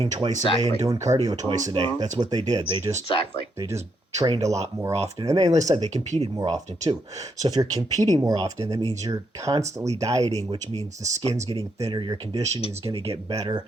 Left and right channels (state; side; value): normal; both; correlation 0.78